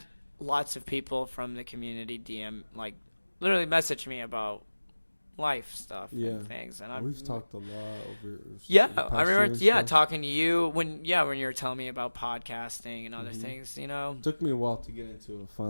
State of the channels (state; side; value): inverted; both; correlation -1.00